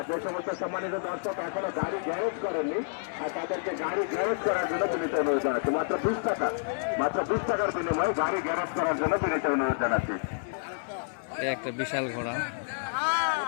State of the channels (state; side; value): silent; right; 58 dB below the other